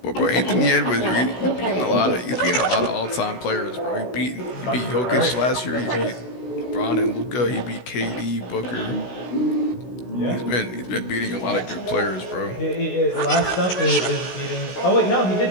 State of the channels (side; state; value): right; late; 16 ms